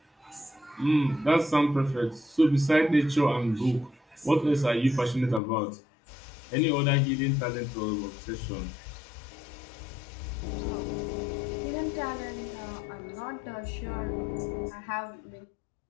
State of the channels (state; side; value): drops out; right; at 5.4 s